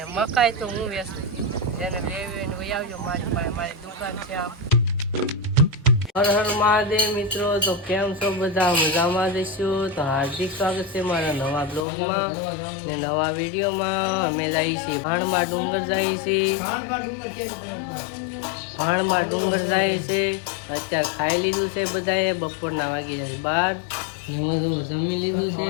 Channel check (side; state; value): right; drops out; at 11.9 s